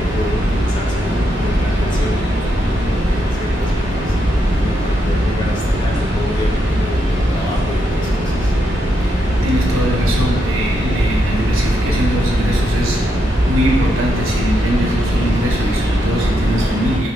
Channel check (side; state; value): both; normal; correlation 0.81